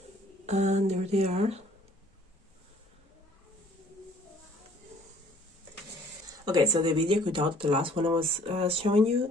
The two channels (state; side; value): normal; both; correlation 0.57